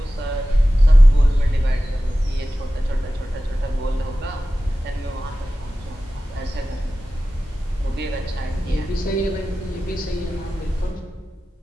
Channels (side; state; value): both; normal; correlation 0.95